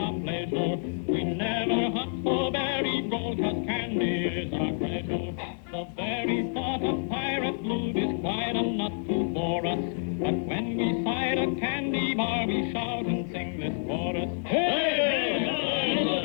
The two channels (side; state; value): right; silent; digital silence